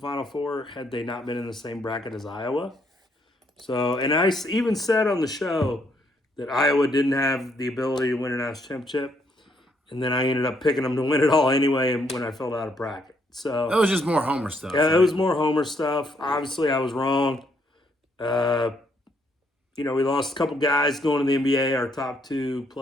Four had they not been in the same bracket as Iowa. So, and I even said on the show that Iowa didn't have the ability to win a national championship, and then I ended up picking them to win it all anyway when I filled out a bracket. So that was just more Homer stuff. Yeah, it was more Homer stuff. Obviously, I was wrong. We lost a couple guys going to the NBA. Our top two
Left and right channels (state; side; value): normal; both; correlation 0.72